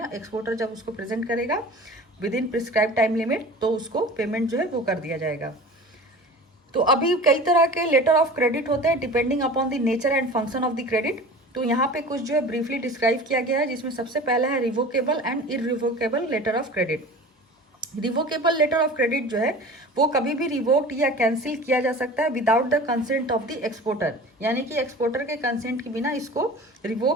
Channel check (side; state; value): both; normal; correlation 0.39